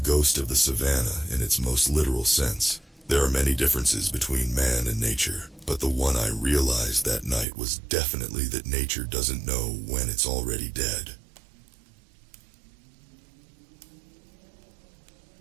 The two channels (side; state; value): left; drops out; at 7.5 s